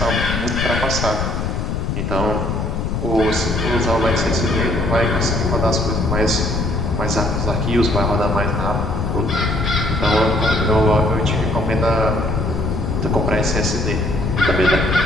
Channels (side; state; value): left; noise; rumble, 1 dB below the sound